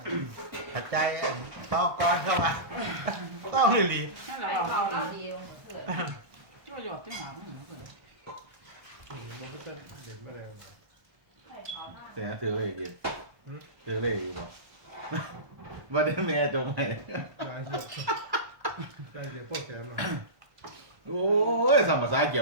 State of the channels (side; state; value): left; late; 1.2 ms